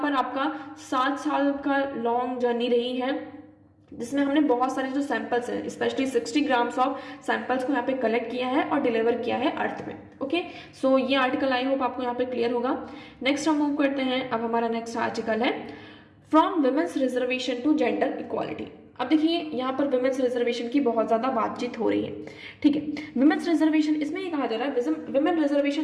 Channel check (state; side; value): identical; both; correlation 1.00